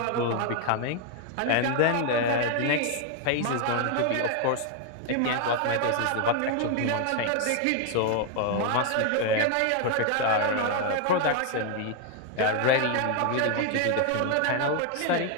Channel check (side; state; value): both; different; correlation 0.01